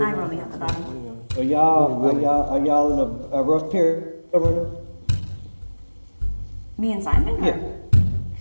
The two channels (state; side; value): inverted; both; correlation -1.00